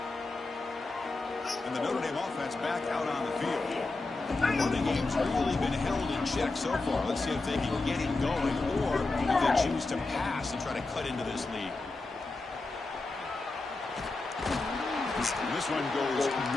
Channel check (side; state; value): right; quieter; 3.3 dB